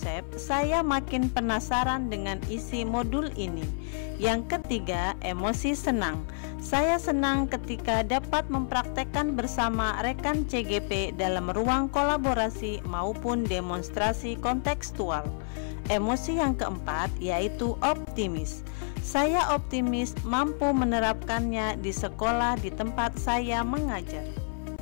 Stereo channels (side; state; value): right; silent; 55 dB below the other